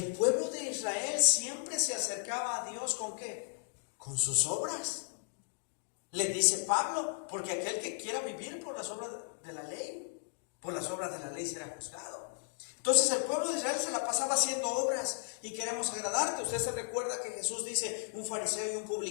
pueblo de Israel siempre se acercaba a Dios ¿con qué? Con sus obras. Le dice Pablo: porque aquel que quiera vivir por las obras de la ley, por las obras de la ley será juzgado. Entonces el pueblo de Israel se la pasaba haciendo obras y queremos agradarte. Usted se recuerda que Jesús dice: un fariseo y un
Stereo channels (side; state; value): right; silent; digital silence